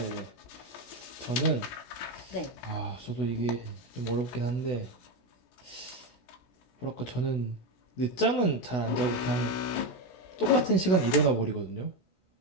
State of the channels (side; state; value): right; late; 17 ms